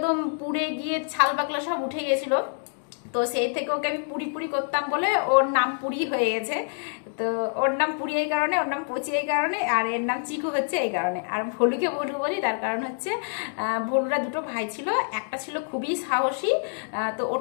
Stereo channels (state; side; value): silent; right; digital silence